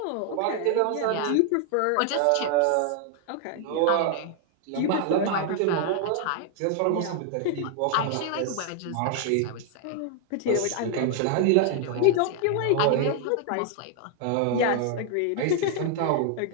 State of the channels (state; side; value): different; both; correlation 0.00